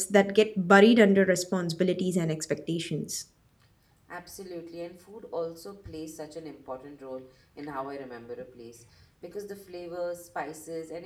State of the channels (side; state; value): both; identical; correlation 1.00